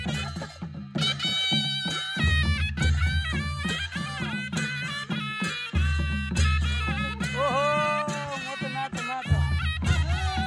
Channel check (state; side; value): identical; both; correlation 1.00